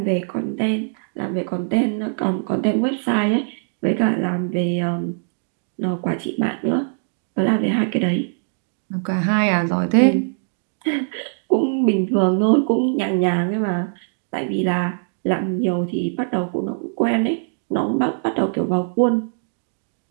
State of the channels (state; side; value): silent; left; digital silence